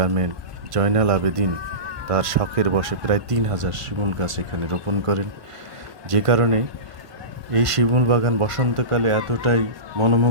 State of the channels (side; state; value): left; late; 1.1 ms